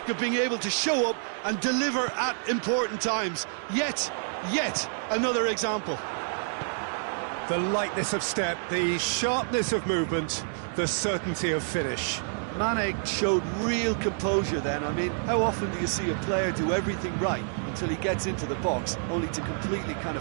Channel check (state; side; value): silent; left; digital silence